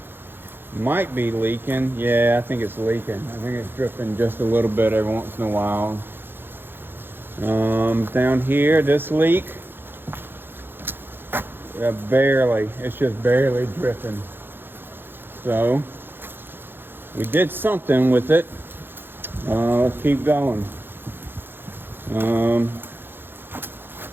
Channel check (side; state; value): left; late; 0.10 ms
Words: might be leaking. Yeah, I think it's leaking. I think it's dripping just a little bit every once in a while. Down here, this leak, barely, it's just barely dripping. So we did something with it. Let's keep going.